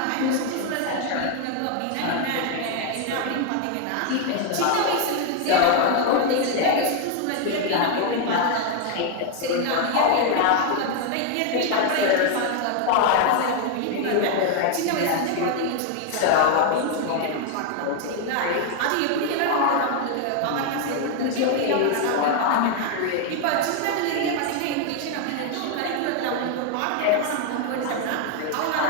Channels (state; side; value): different; both; correlation 0.00